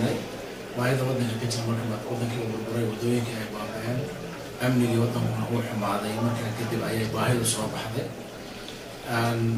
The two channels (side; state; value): both; identical; correlation 1.00